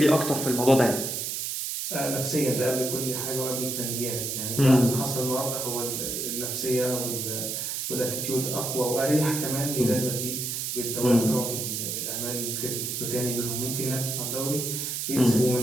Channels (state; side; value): noise; right; hiss, 3 dB below the sound